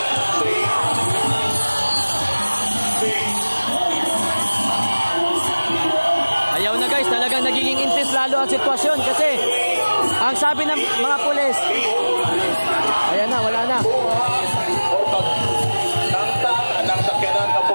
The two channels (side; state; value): both; inverted; correlation -1.00